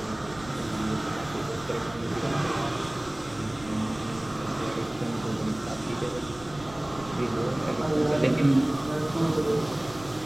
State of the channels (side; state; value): right; noise; rumble, 19 dB below the sound